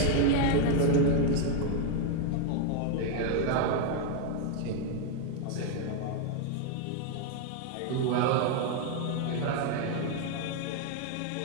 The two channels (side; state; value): both; different; correlation 0.01